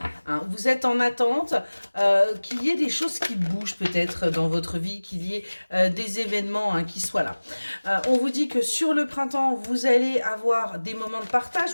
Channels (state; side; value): inverted; both; correlation -1.00